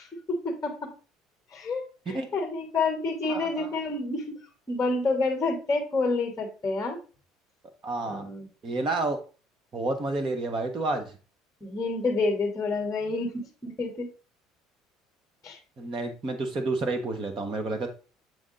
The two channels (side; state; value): both; normal; correlation 0.68